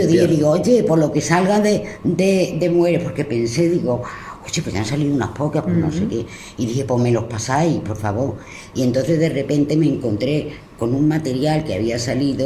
digo, oye, por lo que salga de mujeres, porque pensé, digo, oye, pues ya han salido unas pocas, pues no sé qué. Y dije, pues me los pasáis, por favor. Y entonces de repente me encontré con un material que había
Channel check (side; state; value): both; identical; correlation 1.00